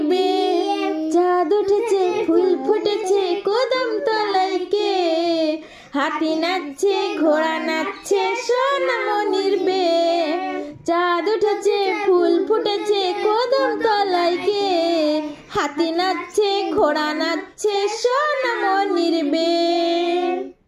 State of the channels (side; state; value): both; identical; correlation 1.00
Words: বে। চাঁদ উঠেছে ফুল ফুটেছে কদম তলায় কে, হাতি নাচছে ঘোড়া নাচছে সোনা মনির বে। চাঁদ উঠেছে ফুল ফুটেছে কদম তলায় কে, হাতি নাচছে ঘোড়া নাচছে সোনা মনির বে।